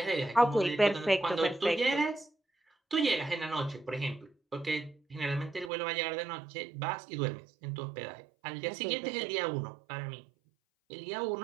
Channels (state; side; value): drops out; left; at 5.7 s